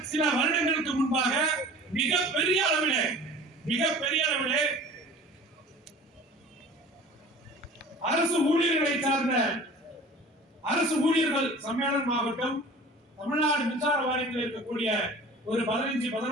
சில வருடங்களுக்கு முன்பாக மிகப்பெரிய அளவிலே அரசு ஊழியர்களை சார்ந்த அரசு ஊழியர்கள் சம்மேளனம் ஆகட்டும், தமிழ்நாடு மின்சார வாரியத்தில் இருக்கக்கூடிய ஒரு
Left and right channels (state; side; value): normal; both; correlation 0.43